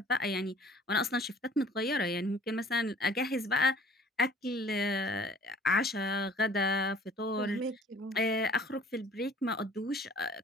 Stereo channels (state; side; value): normal; both; correlation 0.52